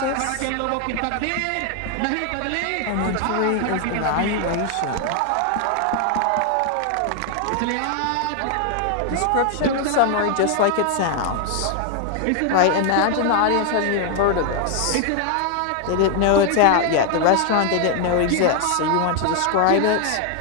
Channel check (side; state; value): both; different; correlation 0.00